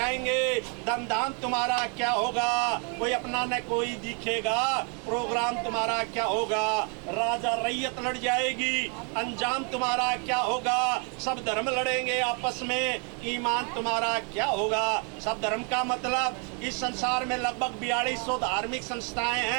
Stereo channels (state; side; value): quieter; left; 37.1 dB